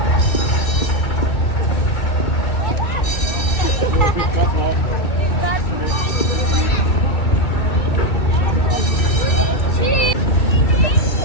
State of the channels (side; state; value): right; late; 2.8 ms